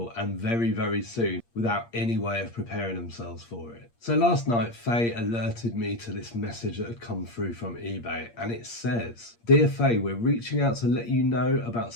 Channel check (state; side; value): late; right; 8.6 ms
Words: and very, very soon without any way of preparing themselves for it. So last night, Faye alerted me to this message that had come through from eBay and it says, "Dear Faye, we're reaching out to let you know about